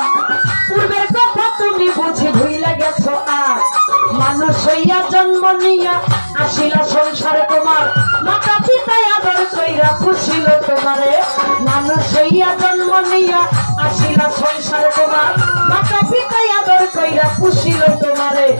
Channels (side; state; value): both; inverted; correlation -1.00